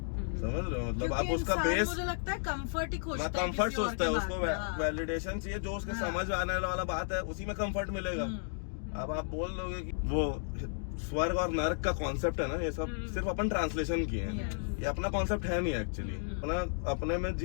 समझ रहे हो? मतलब आप उसका बेस, मुझे लगता है कंफर्ट ही खोजता है, कंफर्ट किसी और सोचता है, के उसको बाद। हाँ। वैलिडेशन चाहिए, जो उसके समझ आने वाला बात है उसी में कंफर्ट मिलेगा। अब आप बोल दोगे कि वो स्वर्ग और नरक का कॉन्सेप्ट है ना, ये सब सिर्फ अपन ट्रांसलेशन किए हैं, ये अपना कॉन्सेप्ट है नहीं एक्चुअली। अपने में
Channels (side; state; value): right; silent; digital silence